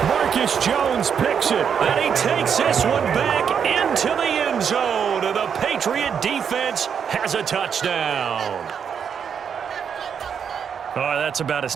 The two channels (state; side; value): quieter; left; 7.4 dB